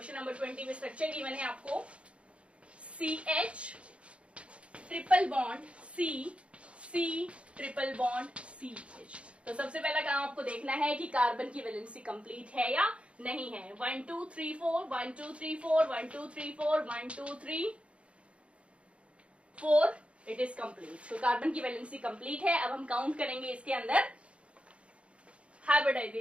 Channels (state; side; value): late; left; 0.060 ms